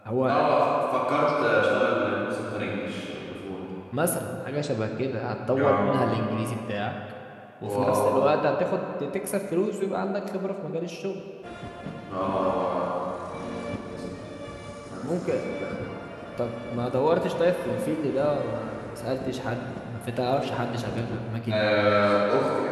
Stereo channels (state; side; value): identical; both; correlation 1.00